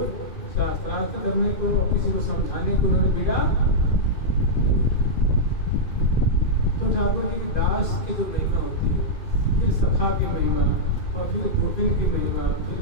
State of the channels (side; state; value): right; late; 2.5 ms